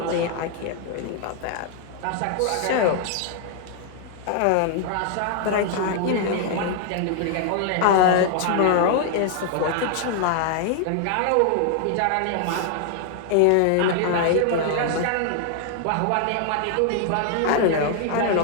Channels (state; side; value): different; both; correlation 0.00